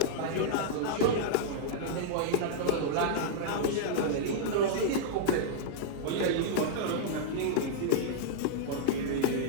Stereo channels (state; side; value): different; both; correlation -0.02